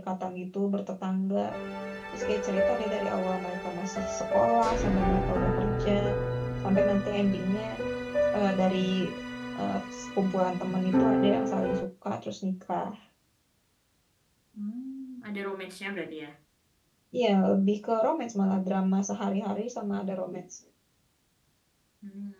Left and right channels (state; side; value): identical; both; correlation 1.00